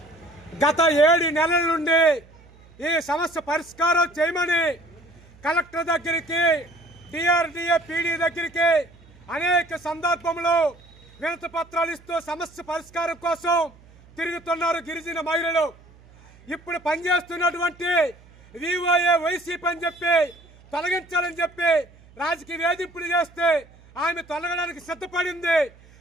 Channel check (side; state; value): right; noise; hum, 25 dB below the sound